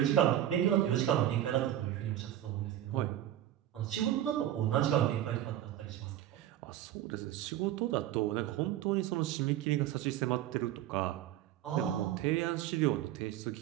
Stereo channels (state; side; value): quieter; left; 12.4 dB